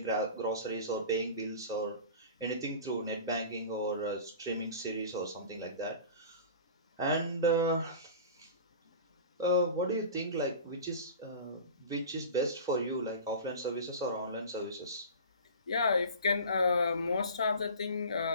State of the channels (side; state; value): both; inverted; correlation -0.36